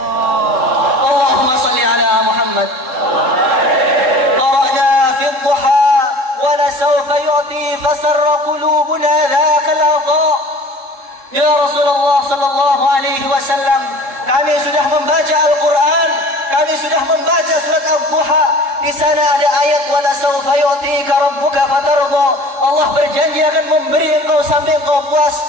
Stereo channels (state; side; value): late; left; 3.7 ms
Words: Allahumma salli ala Muhammad. Qara'na fi dhuha wa la sawfa yu'ti fasarra qulubuna dhaka al-adha. Ya Rasulullah sallallahu alaihi wasallam, kami sudah membaca Al-Quran, kami sudah membaca surat Al-Duha. Di sana ada ayat wala sawfa yu'tika rabbuka fatardha. Allah berjanji akan memberi engkau sampai engkau puas.